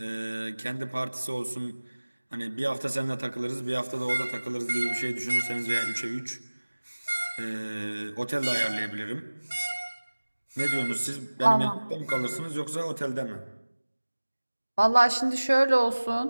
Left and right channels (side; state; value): both; inverted; correlation -1.00